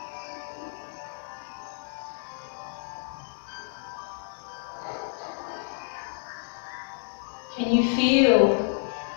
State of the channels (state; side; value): silent; right; digital silence